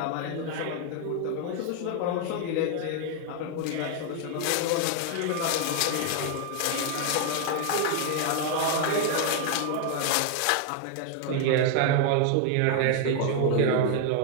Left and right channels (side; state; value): both; different; correlation 0.00